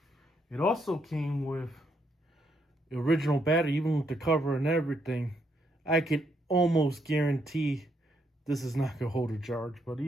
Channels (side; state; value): both; normal; correlation 0.75